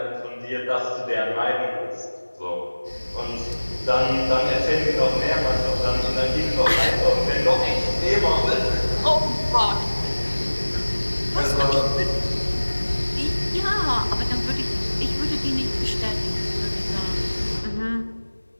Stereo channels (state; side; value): inverted; both; correlation -1.00